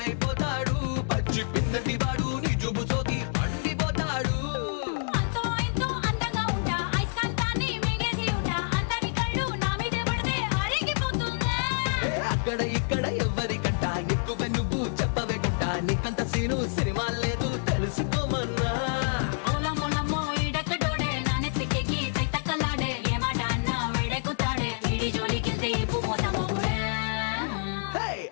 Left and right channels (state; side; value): silent; right; 60 dB below the other